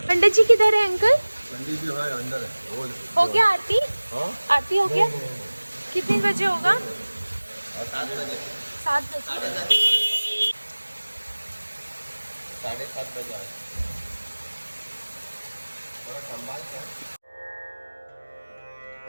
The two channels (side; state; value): both; inverted; correlation -1.00